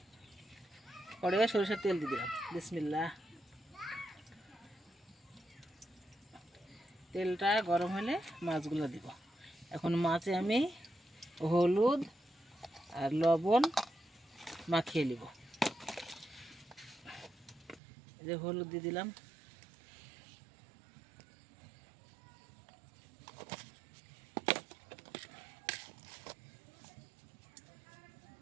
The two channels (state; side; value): drops out; left; at 17.8 s